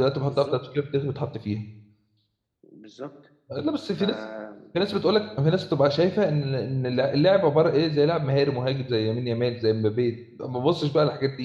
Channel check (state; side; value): identical; both; correlation 1.00